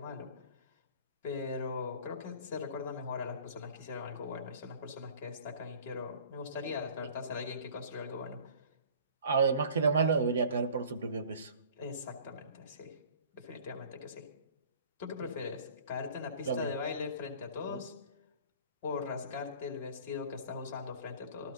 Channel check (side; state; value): both; inverted; correlation -0.48